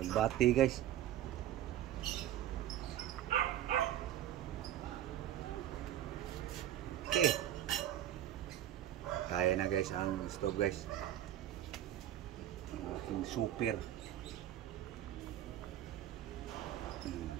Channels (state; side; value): quieter; left; 12.1 dB